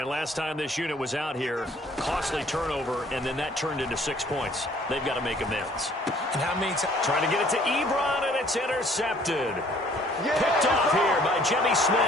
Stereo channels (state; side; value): normal; both; correlation 0.58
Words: last time this unit was out here, costly turnover, and then that turned into 6 points. They've got to make amends. And how many times? Trying to get it to Ebron, and it's intercepted. Picked off here by Jimmy